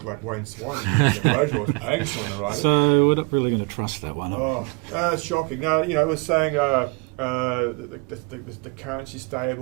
like Wayne Swan. The wrote or was paying someone to write it. So we're not really going to trust that one. Oh, it's shocking. Now, it was saying the currency's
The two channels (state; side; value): quieter; left; 30.4 dB